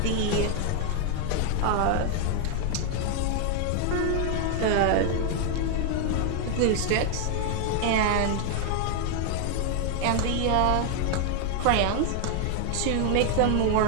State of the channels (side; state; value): both; different; correlation 0.00